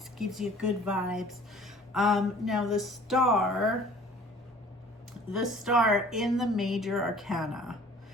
gives you good vibes. Now, the Star in the major arcana,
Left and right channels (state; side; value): normal; both; correlation 0.50